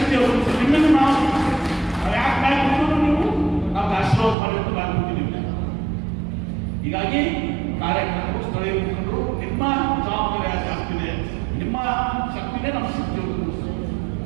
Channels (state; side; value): drops out; left; at 4.4 s